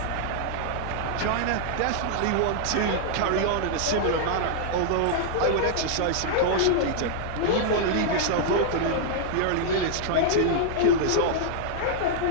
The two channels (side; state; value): both; different; correlation -0.01